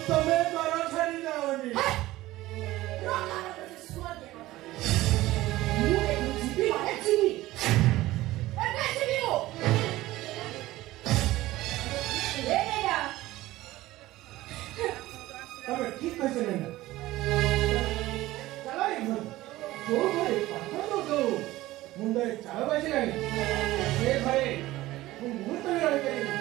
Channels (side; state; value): left; quieter; 17.1 dB